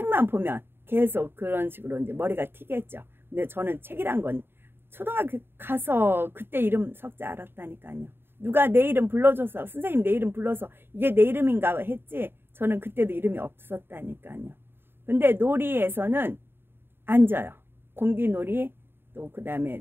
보면 계속 그런 식으로 이제 머리가 튀겠죠. 근데 저는 책이란 건 초등학교 가서 그때 이름 석자 알았다니까요. 누가 내 이름 불러줘서, 선생님 내 이름 불러서 이게 내 이름인가 했지, 저는 그때도 이름이 없었다니까요. 근데 놀이에서는 앉아요. 공기놀이, 또 그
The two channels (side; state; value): left; late; 0.11 ms